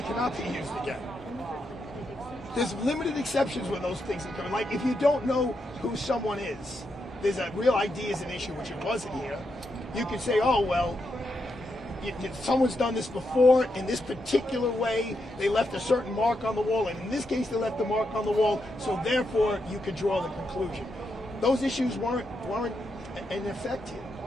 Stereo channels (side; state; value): both; normal; correlation 0.83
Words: be used again. There's limited exceptions when those things come in. Like, if you don't know who someone is, there's a real ID is an issue, which it wasn't here. You could say, oh, well, someone's done this before in this particular way. They left a certain mark on the wall, and in this case, they left the mark on the wall, so therefore, you could draw the conclusion. Those issues weren't in effect here.